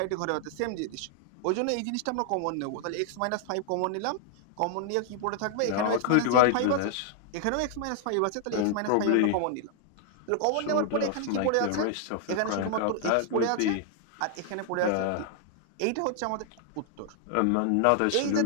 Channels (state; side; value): different; both; correlation 0.00